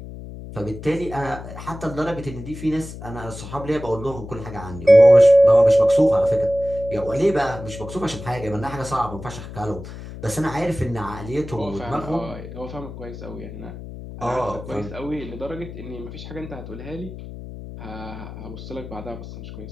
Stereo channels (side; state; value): left; noise; hum, 12 dB below the sound